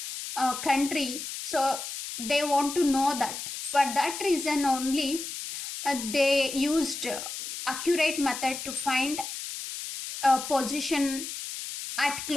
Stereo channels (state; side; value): noise; left; hiss, 7 dB below the sound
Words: country. So they want to know that. For that reason only, they used accurate method to find a position at